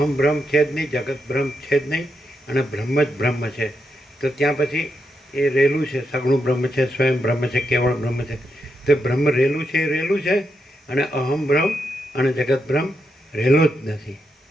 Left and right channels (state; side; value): normal; both; correlation 0.83